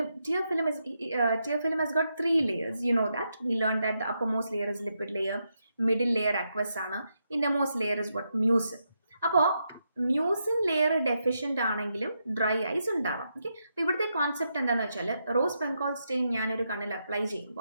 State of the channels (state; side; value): inverted; both; correlation -0.83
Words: film has got 3 layers. You know that. We learned that the uppermost layer is lipid layer, middle layer aqueous ആണ്, innermost layer is what? Mucin. അപ്പോൾ mucin layer deficient ആണെങ്കിലും dry ice ഉണ്ടാവാം. ഓക്കെ, അപ്പോൾ ഇവിടുത്തെ കോൺസെപ്റ്റ് എന്താണെന്ന് വെച്ചാൽ, റോസ് ബംഗാൾ സ്റ്റെയിൻ ഞാനൊരു കണ്ണിൽ അപ്ലൈ